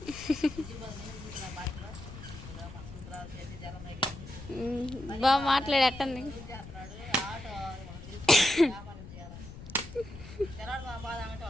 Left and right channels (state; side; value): noise; left; rumble, 13 dB below the sound